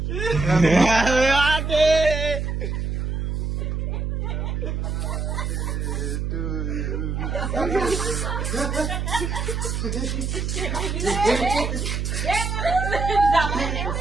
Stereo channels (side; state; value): right; noise; hum, 1 dB below the sound